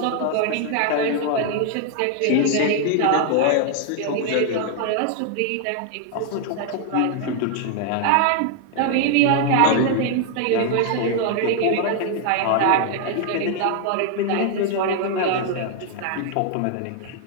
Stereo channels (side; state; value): both; different; correlation 0.00